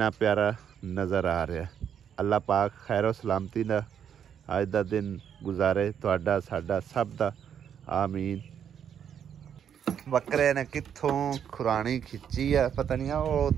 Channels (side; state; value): left; quieter; 8.5 dB